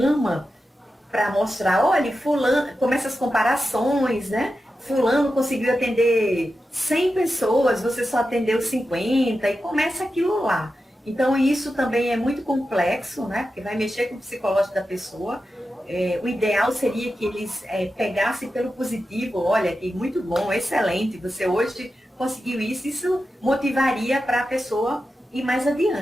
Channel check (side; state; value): both; normal; correlation 0.91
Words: para mostrar, olha, fulano, começa as comparações, né? Fulano conseguiu atender 100 pessoas, você só atendeu 50, e começa aquilo lá. Então, isso também é muito complexo, né? Porque vai mexer com o psicológico da pessoa. O ideal seria que eles pegassem pelo positivo, olha, que muito bom, excelente, você hoje conseguiu isso, isso motivaria para a pessoa ir mais